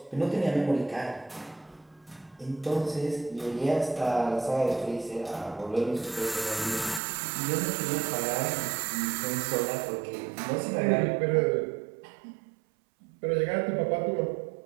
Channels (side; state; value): left; drops out; at 7.0 s